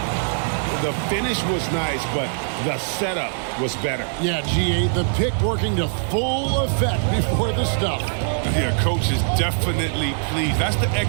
The finish was nice, but the setup was better. Yeah, G8, the pick working to full effect before the stuff. Yeah, coach is definitely pleased. That's the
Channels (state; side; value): silent; left; 64 dB below the other